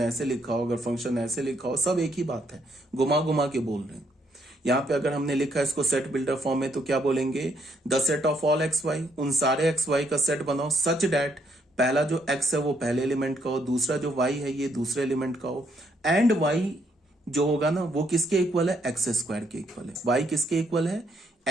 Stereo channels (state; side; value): normal; both; correlation 0.72